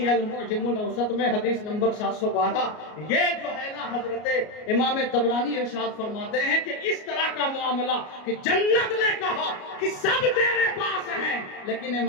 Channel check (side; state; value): right; late; 33 ms